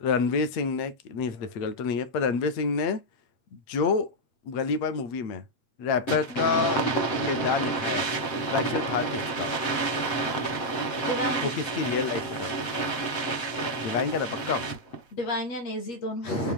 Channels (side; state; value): right; late; 7.8 ms